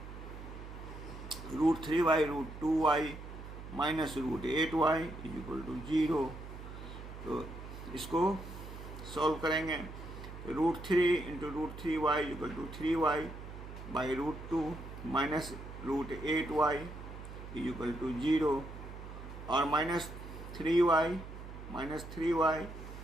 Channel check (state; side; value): noise; right; hum, 11 dB below the sound